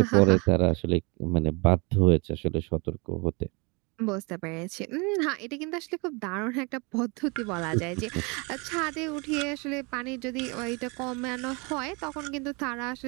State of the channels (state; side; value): quieter; left; 29.8 dB